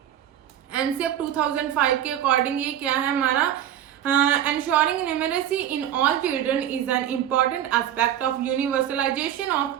एनसीएफ 2005 के अकॉर्डिंग ये क्या है हमारा? Ensuring numeracy in all children is an important aspect of universalization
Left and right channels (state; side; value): quieter; left; 10.8 dB